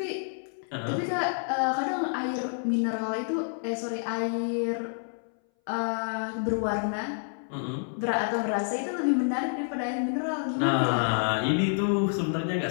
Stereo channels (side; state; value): right; silent; 59 dB below the other